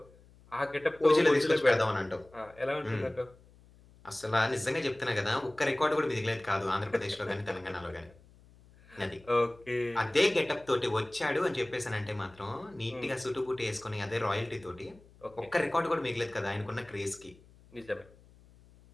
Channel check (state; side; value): noise; left; hum, 26 dB below the sound